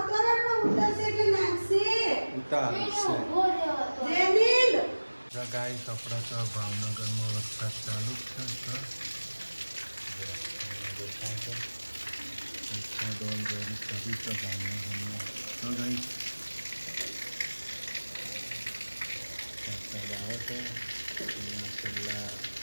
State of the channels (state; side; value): inverted; both; correlation -1.00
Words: ગાઈસ. આપણે તો ભાવનગરમાં વરસાદ ચાલુ જ છે. વરસાદ ઓલરેડી ચાલુ છે ભાવનગરમાં. તો ગાઈસ વરસાદ આવે છે. છેલ્લા